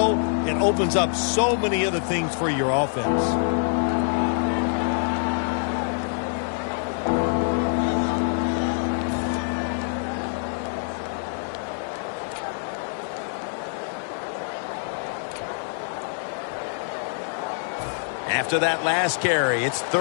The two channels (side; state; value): right; silent; digital silence